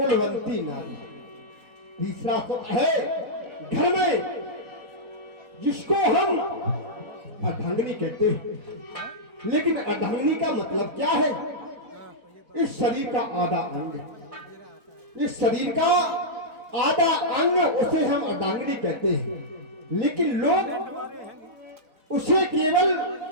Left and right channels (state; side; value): late; left; 4.4 ms